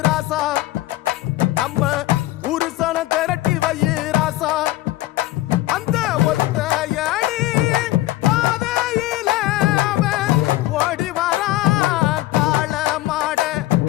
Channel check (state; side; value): quieter; right; 17.0 dB